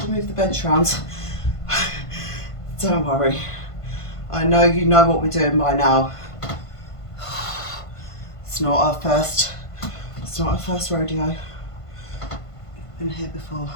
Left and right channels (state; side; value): late; right; 1.5 ms